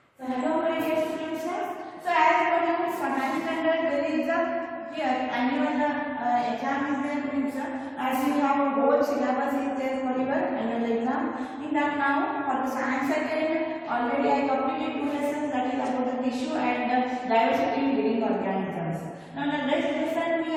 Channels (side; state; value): both; identical; correlation 1.00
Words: So hello my dear students. So as per you for 9th standard there is a here annual exam is there means as you have a whole syllabus is there for your annual exam. In that now for the science second already I completed 2 lessons, that is about the tissue and diversity in living organisms. Now the next lesson we